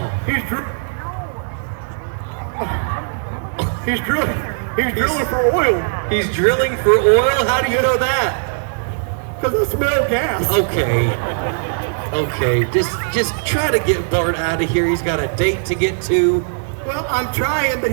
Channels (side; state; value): left; silent; 66 dB below the other